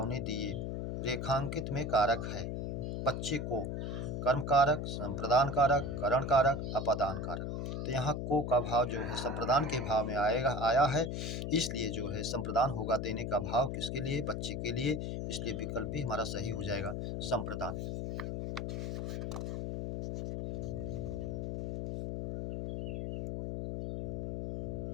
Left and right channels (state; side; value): noise; left; hum, 3 dB below the sound